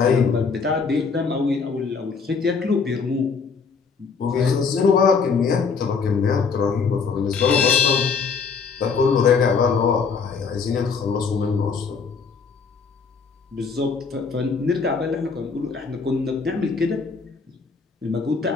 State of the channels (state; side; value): quieter; right; 5.3 dB